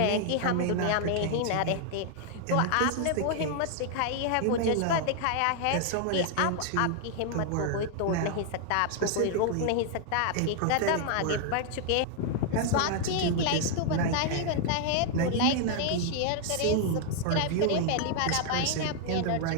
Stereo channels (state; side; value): different; both; correlation 0.00